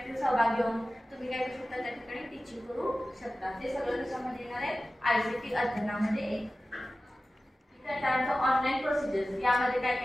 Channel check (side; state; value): both; normal; correlation 0.96